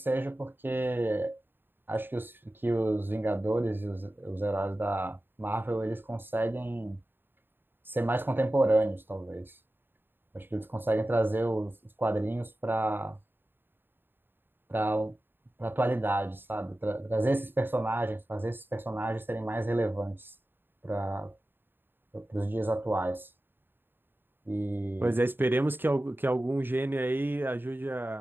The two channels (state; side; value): late; left; 0.097 ms